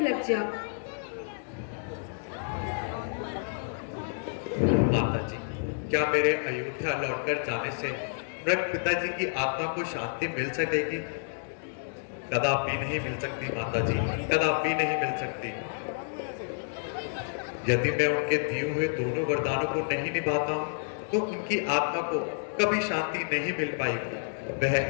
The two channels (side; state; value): right; silent; digital silence